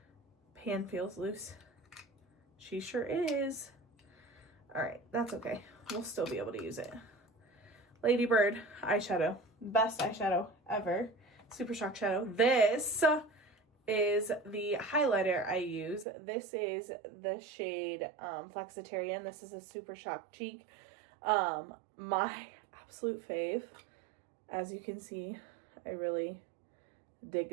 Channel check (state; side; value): drops out; left; at 16.1 s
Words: Pan feels loose. She sure is. Alright, that's okay. We'll still be able to use it. Lady Bird eyeshadow. Best eyeshadow ever. Super Shock Shadow. This is the highlighter I use. This is the shade Flexitarian. This is a Super Shock Cheek. My absolute fave. As you can see, I really